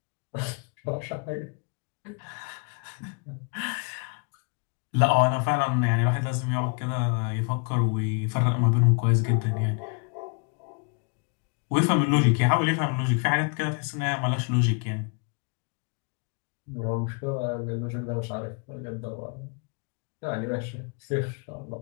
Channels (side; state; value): right; quieter; 37.4 dB